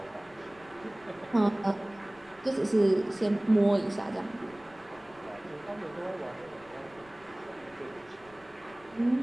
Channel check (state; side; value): noise; left; rumble, 26 dB below the sound